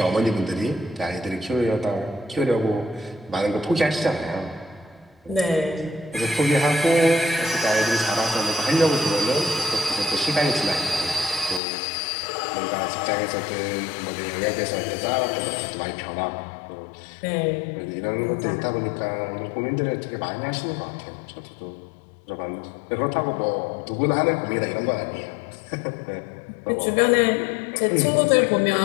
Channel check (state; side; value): drops out; right; at 11.6 s